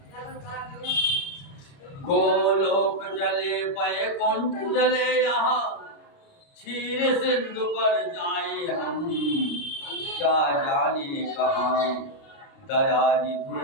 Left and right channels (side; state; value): right; late; 29 ms